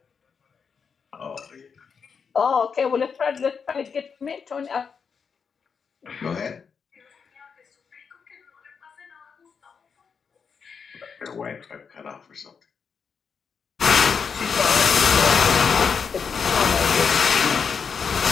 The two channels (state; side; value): quieter; right; 6.1 dB